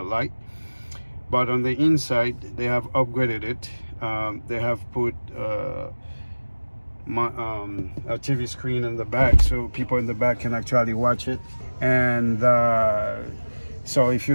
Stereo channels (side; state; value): both; inverted; correlation -1.00